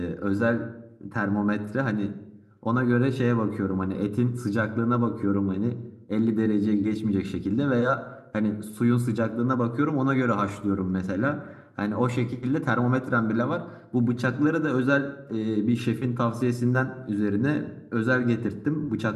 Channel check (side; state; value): both; identical; correlation 1.00